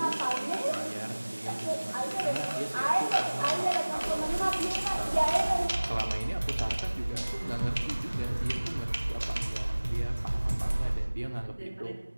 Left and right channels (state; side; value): inverted; both; correlation -1.00